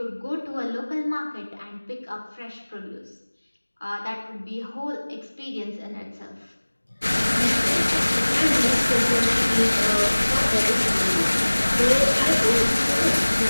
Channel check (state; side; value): inverted; both; correlation -1.00